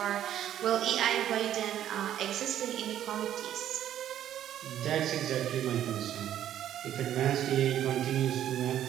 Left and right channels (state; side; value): quieter; left; 11.2 dB